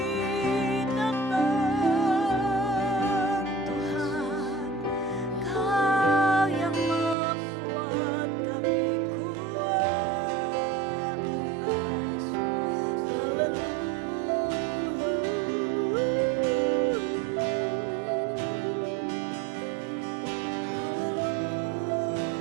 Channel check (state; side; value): drops out; left; at 7.2 s